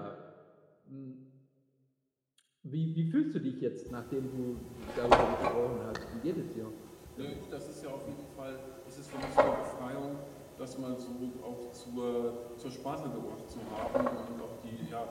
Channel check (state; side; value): identical; both; correlation 1.00